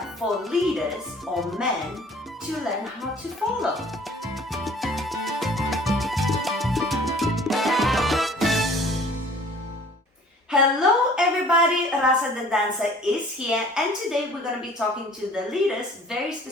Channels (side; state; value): both; normal; correlation 0.52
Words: for leaders or men to learn how to follow? Hello everybody, Rasa the dancer is here, and today we're going to be talking to the leaders, very